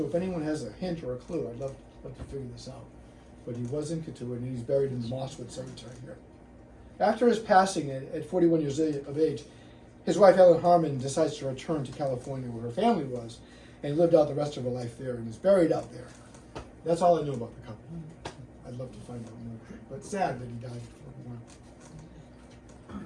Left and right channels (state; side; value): identical; both; correlation 1.00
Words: if anyone has a hint or a clue, I'd love to figure this out. But he was in Cotuit, and he's buried in the Mosswood Cemetery here. After his passing at 41 years of age, his wife Ellen Harmon decides to return to California where her family was, and lived out the rest of her life there, and is buried out there. That's all I know about the couple. I'd love to find out more, but sad that he died at